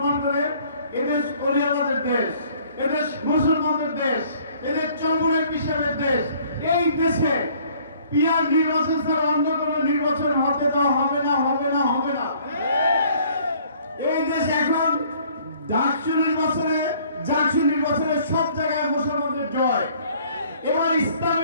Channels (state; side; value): inverted; both; correlation -0.58